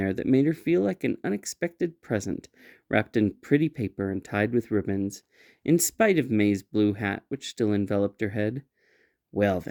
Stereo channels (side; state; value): both; identical; correlation 1.00